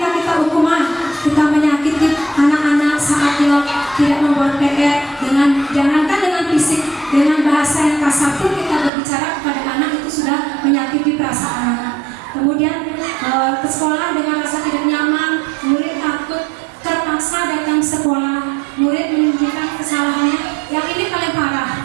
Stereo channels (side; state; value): left; drops out; at 8.9 s